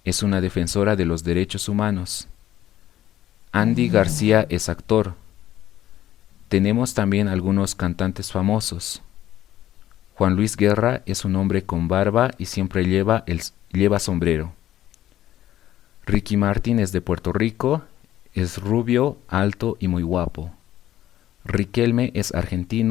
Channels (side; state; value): right; quieter; 12.8 dB